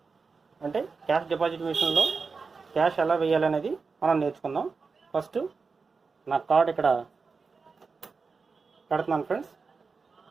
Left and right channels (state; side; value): quieter; left; 4.7 dB